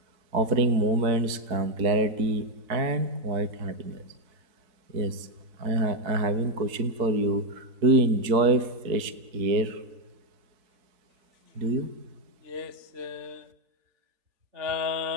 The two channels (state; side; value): late; left; 4.6 ms